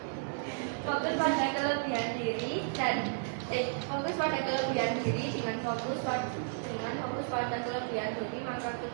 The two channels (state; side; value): silent; left; 56 dB below the other